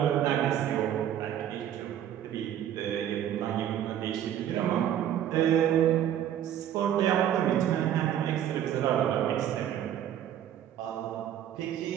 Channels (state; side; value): quieter; left; 10.6 dB